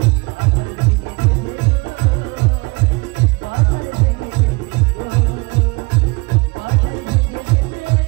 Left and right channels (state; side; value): quieter; left; 26.9 dB